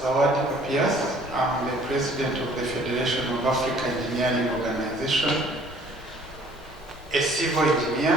Papias. I'm the president of the Federation of Africa Engineering Organization, a civil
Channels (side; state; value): both; normal; correlation 0.55